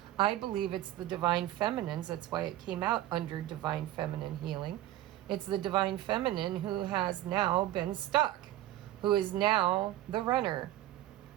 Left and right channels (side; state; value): left; quieter; 14.3 dB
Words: I believe it's the Divine Feminines. That's why it came out under Divine Feminine Healing. It's the Divine Feminine who has now been stuck, who is now the runner.